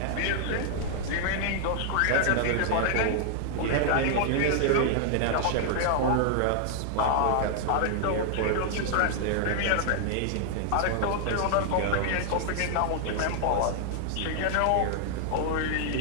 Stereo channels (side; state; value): both; different; correlation 0.00